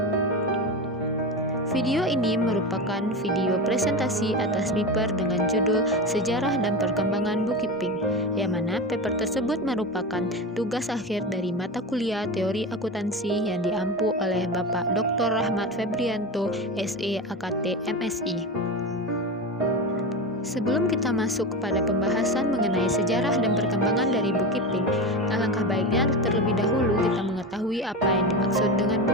Video ini merupakan video presentasi atas paper dengan judul Sejarah dan Perkembangan Bukiping, yang mana paper tersebut merupakan tugas akhir dari mata kuliah Teori Akuntansi yang diampu oleh Bapak Dr. Rahmat Febrianto, SE AKT MSI. Sebelum kita masuk kepada pembahasan mengenai sejarah dan perkembangan dari Bukiping, alangkah baiknya terlebih dahulu kita mengetahui apa yang dimaksud dengan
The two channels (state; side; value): normal; both; correlation 0.23